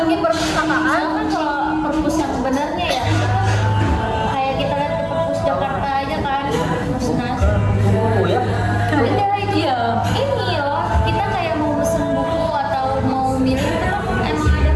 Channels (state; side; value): identical; both; correlation 1.00